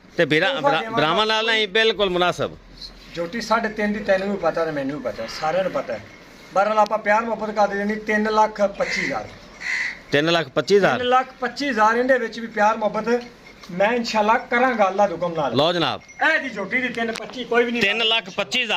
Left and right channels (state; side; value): identical; both; correlation 1.00